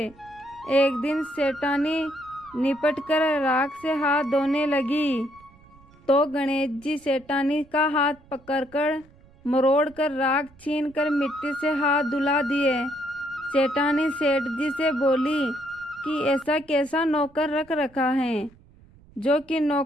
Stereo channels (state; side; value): noise; right; rumble, 27 dB below the sound